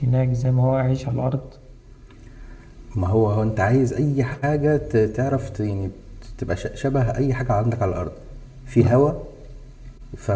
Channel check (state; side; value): identical; both; correlation 1.00